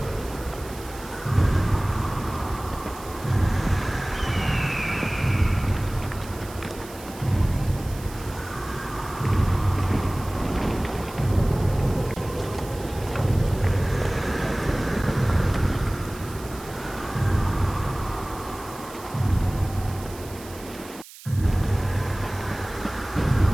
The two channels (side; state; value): right; noise; hiss, 18 dB below the sound